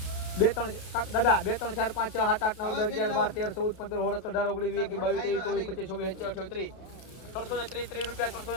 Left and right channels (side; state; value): right; late; 32 ms